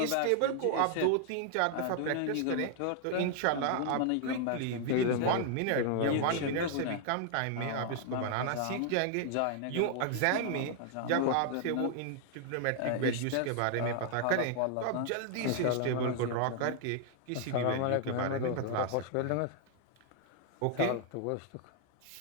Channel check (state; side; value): different; both; correlation 0.00